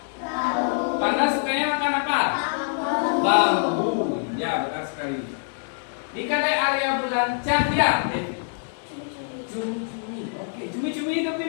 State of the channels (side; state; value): right; silent; digital silence